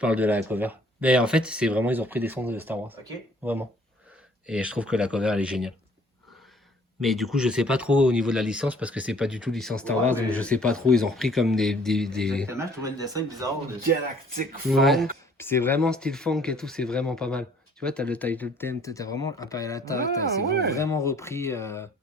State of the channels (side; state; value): both; normal; correlation 0.58